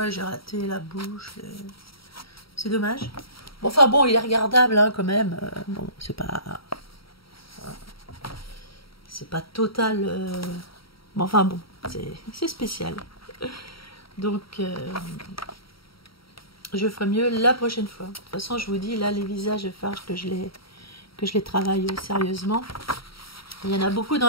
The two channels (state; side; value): late; right; 0.75 ms